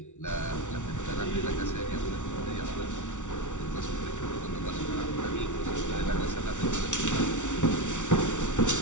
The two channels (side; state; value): right; late; 0.86 ms